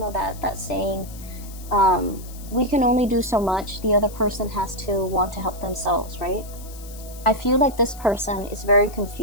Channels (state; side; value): noise; left; hiss, 18 dB below the sound